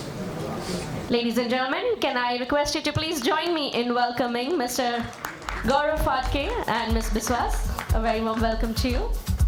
Ladies and gentlemen, can I request you to please join me in welcoming Mr. Gaurav Phadke and Ms. Biswas. A very warm welcome to you.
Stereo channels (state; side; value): identical; both; correlation 1.00